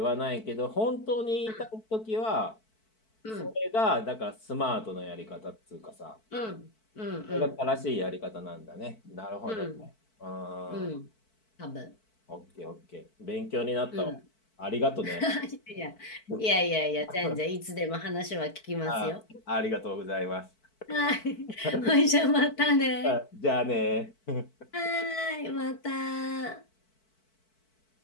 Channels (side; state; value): right; late; 4.5 ms